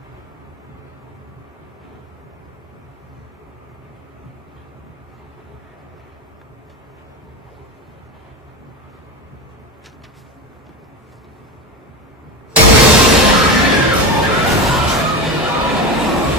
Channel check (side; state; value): both; normal; correlation 0.21